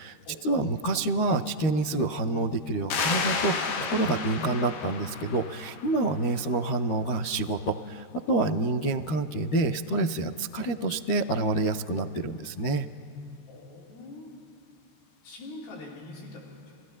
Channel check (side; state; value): right; late; 13 ms